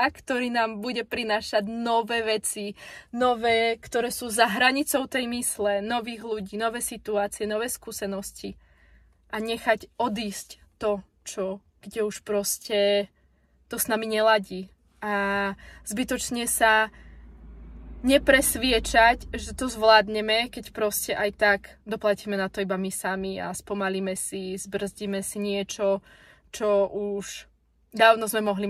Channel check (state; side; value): identical; both; correlation 1.00